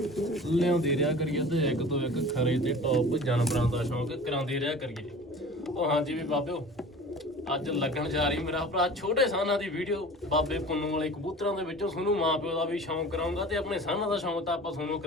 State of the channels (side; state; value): both; normal; correlation 0.40